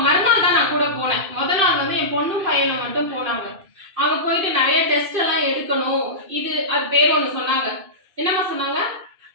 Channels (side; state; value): left; late; 2.6 ms